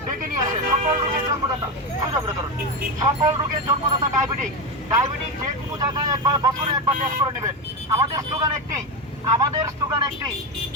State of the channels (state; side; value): normal; both; correlation 0.15